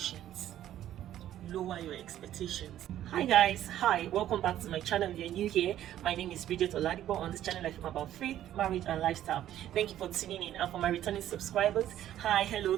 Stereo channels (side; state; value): left; quieter; 12.1 dB